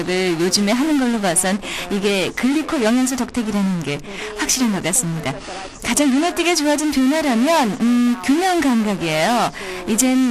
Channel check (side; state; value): both; identical; correlation 1.00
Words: 요즘에 하는 걸로 봐선 이게 글리코 영양소 덕택이라는 게 확실한 것 같습니다. 가장 눈에 띄게 좋아진 변화라면 균형 감각이에요.